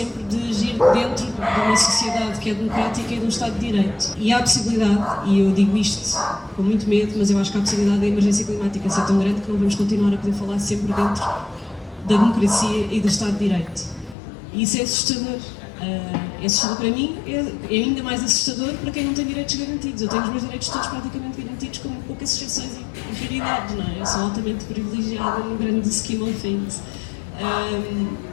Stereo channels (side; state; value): right; drops out; at 14.2 s